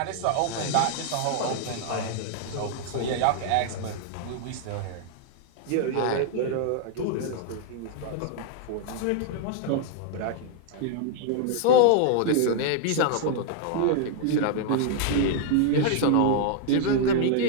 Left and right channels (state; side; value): different; both; correlation 0.00